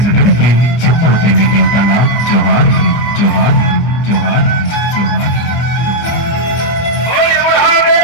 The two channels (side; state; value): right; late; 25 ms